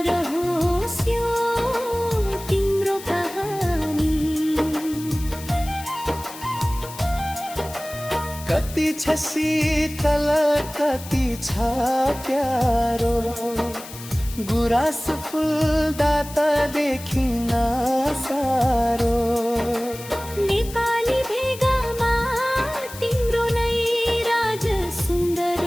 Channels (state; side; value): noise; left; hiss, 15 dB below the sound